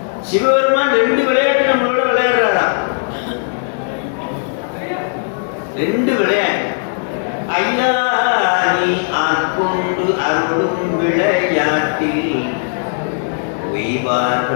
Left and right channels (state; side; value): silent; right; 64 dB below the other